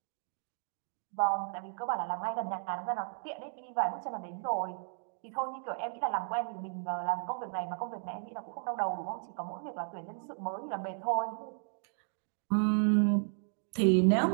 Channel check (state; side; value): silent; left; digital silence